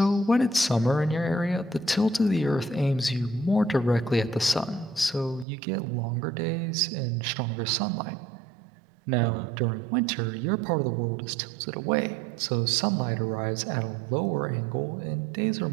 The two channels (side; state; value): left; drops out; at 5.5 s